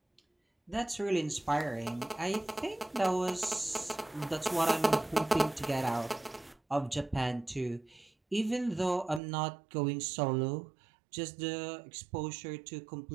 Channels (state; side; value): drops out; left; at 9.2 s